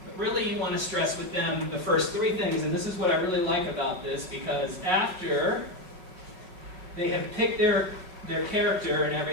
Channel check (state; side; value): late; left; 5.4 ms